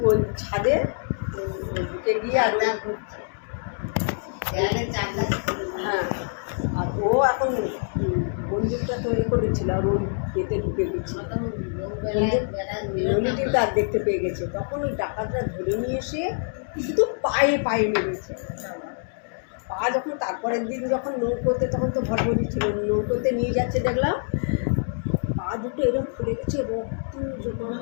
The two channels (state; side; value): silent; right; digital silence